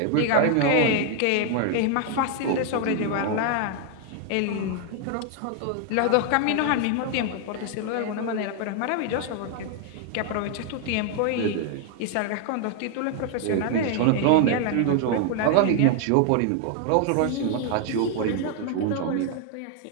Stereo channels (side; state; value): both; different; correlation 0.00